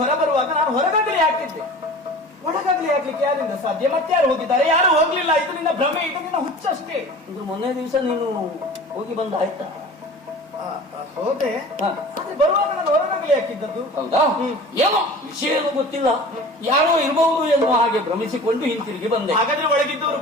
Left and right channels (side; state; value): both; normal; correlation 0.40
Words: ಹೊರ ಬರುವಾಗ ನಾನು ಹೊರಗಗಲಿ ಹಾಕಿದ್ದೆ. ಒಳಗಗಲಿ ಹಾಕ್ಲಿಕ್ಕೆ ಯಾರಿಂದ ಸಾಧ್ಯ? ಮತ್ತೆ ಯಾರು ಹೋಗಿದ್ದಾರೆ? ಯಾರು ಹೋಗ್ಲಿಲ್ಲ. ಇದು ನಿನ್ನ ಭ್ರಮೆ, ಇದು ನಿನ್ನ ಹುಚ್ಚಷ್ಟೇ. ಇದು ಮೊನ್ನೆ ದಿವಸ ನೀನು ಹೋಗಿ ಬಂದ ಆಯ್ತಾ? ಹೋದೆ. ಬರುವಾಗ ನಾನು ಹೊರಗಡೆ ಬಾಗಿಲು ಹಾಕಿದ್ದದ್ದು. ಹೌದಾ? ಏನೋ ವಿಷಯ ಏನು ಗೊತ್ತಿಲ್ಲ, ಯಾರೋ ಇರಬಹುದು ಎನ್ನುವ ಹಾಗೆ ಭ್ರಮಿಸಿಕೊಂಡು ಹಿಂತಿರುಗಿ ಬಂದೆ. ಹಾಗಾದ್ರೆ ಒಳಗಿದ್ದವರು